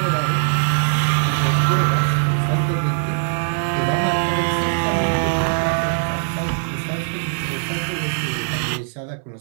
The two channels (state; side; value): silent; left; 65 dB below the other